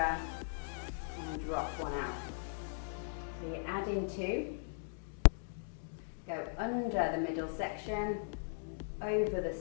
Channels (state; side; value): silent; right; digital silence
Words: and drop one out. So you're adding 2, go under the middle section, over the